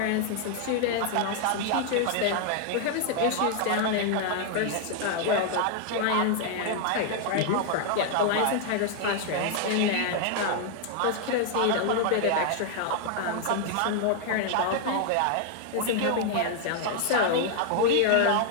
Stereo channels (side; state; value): both; different; correlation 0.00